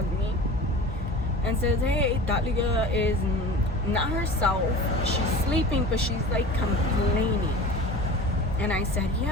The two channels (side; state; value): both; normal; correlation 0.38